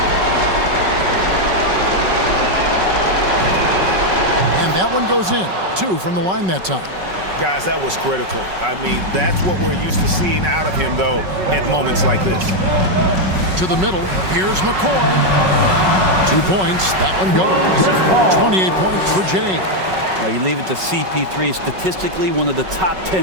And that one goes in. 2 from the line that time. Guys, that was critical. I mean, that's what we're used to seeing out of him, though, at moments like this. To the middle. Here's McCoy. 2 points. That one goes. 28 points for Jay. You leave it to CP3, statistically one of the top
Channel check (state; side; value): late; left; 5.3 ms